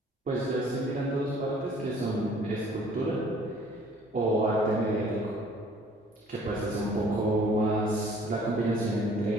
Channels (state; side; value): normal; both; correlation 0.56